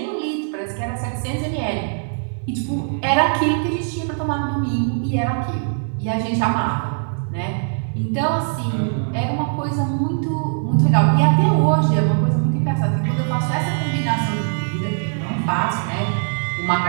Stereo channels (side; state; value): left; silent; 61 dB below the other